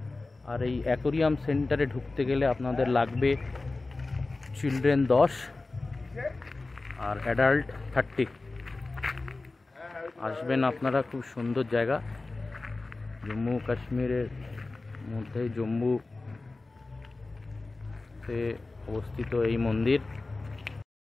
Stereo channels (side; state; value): right; quieter; 3.4 dB